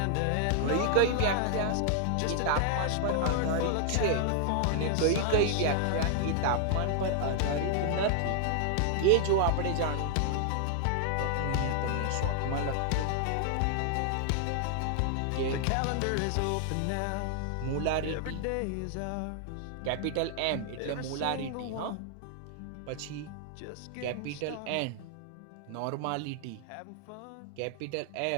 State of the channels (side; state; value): both; different; correlation 0.00